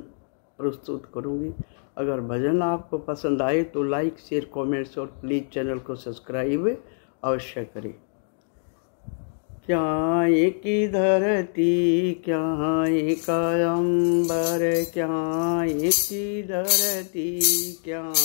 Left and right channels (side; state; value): right; silent; 62 dB below the other